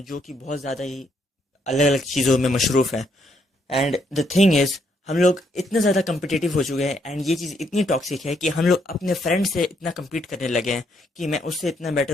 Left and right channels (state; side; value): normal; both; correlation 0.73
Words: कि बहुत ज़्यादा ही अलग अलग चीज़ों में मशरूफ़ है। एंड द थिंग इज़, हम लोग इतने ज़्यादा कम्पिटिटिव हो चुके हैं एंड ये चीज़ इतनी टॉक्सिक है कि हम लोग अपने फ्रेंड से इतना कम्पीट करने लगे हैं कि मैं उससे इतना बेटर